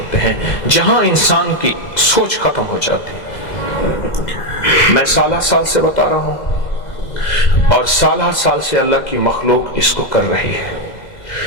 ہیں، جہاں انسان کی سوچ ختم ہو جاتی ہے۔ میں سالہ سال سے بتا رہا ہوں، اور سالہ سال سے اللہ کی مخلوق اس کو کر رہی ہے،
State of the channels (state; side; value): late; right; 2.0 ms